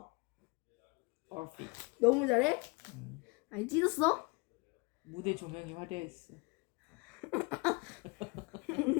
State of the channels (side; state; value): right; quieter; 27.7 dB